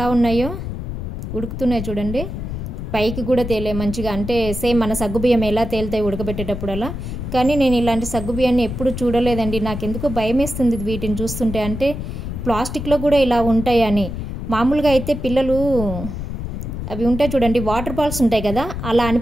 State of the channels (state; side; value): noise; left; rumble, 6 dB below the sound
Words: ఉన్నాయో, ఉడుకుతున్నాయి చూడండి. పైకి కూడా తేలే మంచిగా, అంటే సేమ్ మన సగ్గుబియ్యం ఎలా తేలుతాయి ఉడకబెట్టేటప్పుడు అలా. కానీ నేను ఇలాంటి సగ్గుబియ్యాన్ని ఎప్పుడు చూడలేదండి. నాకెందుకో భయం వేస్తుంది వీటిని చూస్తుంటే. అంటే ప్లాస్టిక్లో కూడా ఇలా ఉంటాయని. మామూలుగా అయితే పిల్లలు అవి ఉంటాయి చూడండి, వాటర్ బాల్స్ ఉంటాయి కదా, అలా